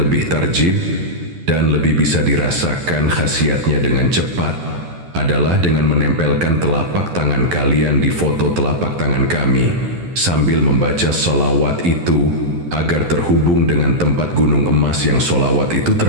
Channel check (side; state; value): left; late; 11 ms